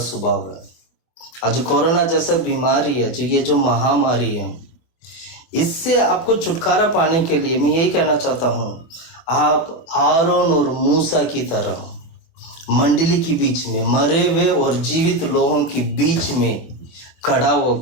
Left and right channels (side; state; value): right; late; 24 ms